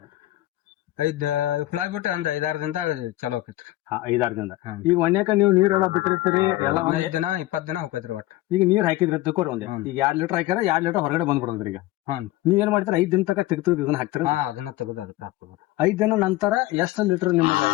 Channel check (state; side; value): quieter; right; 16.9 dB